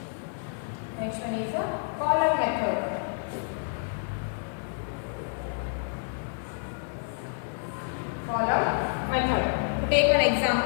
Next one is a column method. Column method. To take an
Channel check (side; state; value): right; silent; digital silence